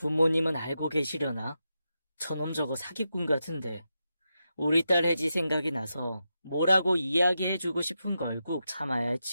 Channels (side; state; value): both; inverted; correlation -0.88